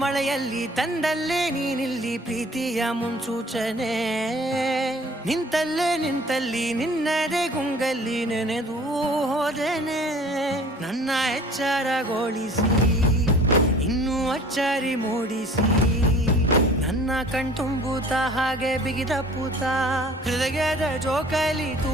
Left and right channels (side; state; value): both; normal; correlation 0.50